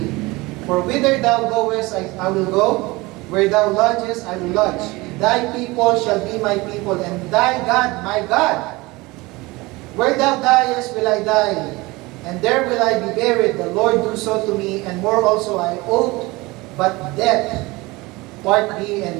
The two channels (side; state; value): left; quieter; 22.4 dB